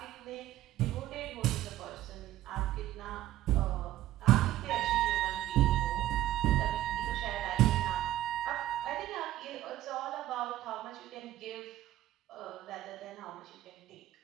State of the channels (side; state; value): left; quieter; 14.2 dB